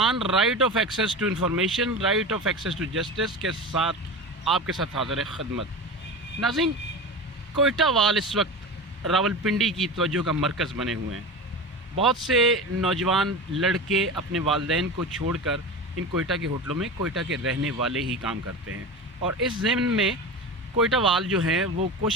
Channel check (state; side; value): normal; both; correlation 0.27